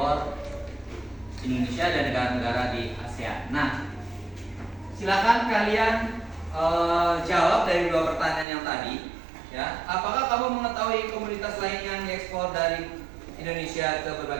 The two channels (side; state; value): left; drops out; at 8.5 s